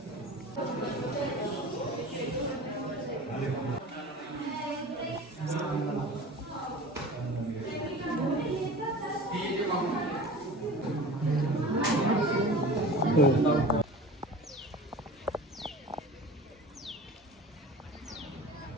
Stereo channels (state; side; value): normal; both; correlation 0.37